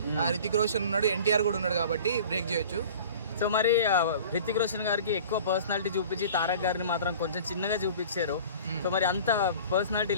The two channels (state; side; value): inverted; both; correlation -0.43